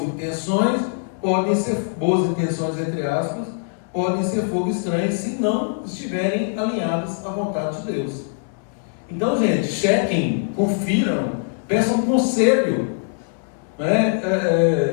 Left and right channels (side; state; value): right; silent; 64 dB below the other